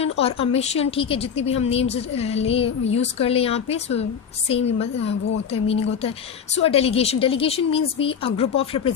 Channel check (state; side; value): quieter; right; 7.2 dB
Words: or a mission. ठीक है, जितनी भी हम names use कर ले यहाँ पे, so same वो होता है, meaning होता है. So a delegation means be a group of